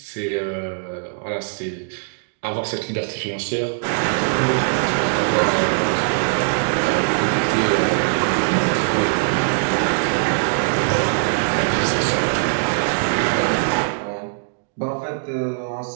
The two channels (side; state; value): left; silent; digital silence